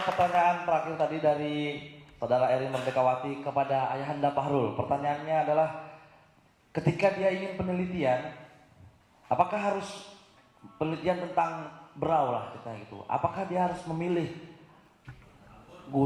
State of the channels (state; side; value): identical; both; correlation 1.00